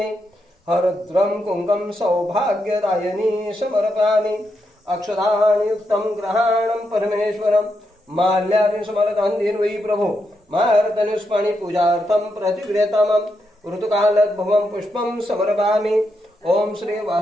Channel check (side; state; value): both; normal; correlation 0.83